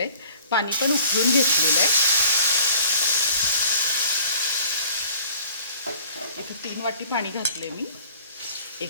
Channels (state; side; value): inverted; both; correlation -0.50